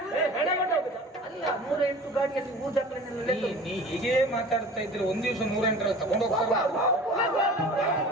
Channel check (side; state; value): both; normal; correlation 0.41